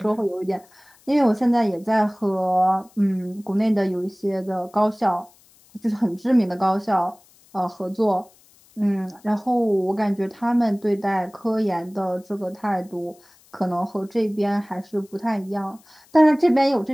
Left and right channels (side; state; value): left; noise; hiss, 29 dB below the sound